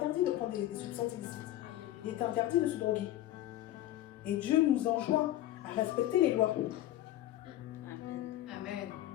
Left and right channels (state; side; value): quieter; right; 14.1 dB